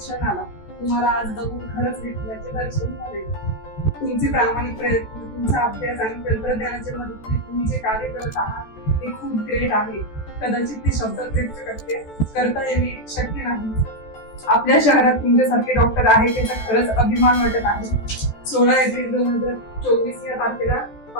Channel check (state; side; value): late; right; 14 ms